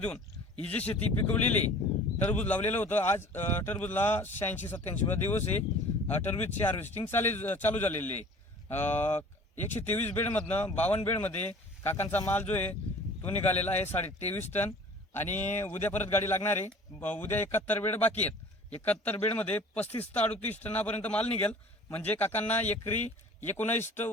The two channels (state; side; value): normal; both; correlation 0.47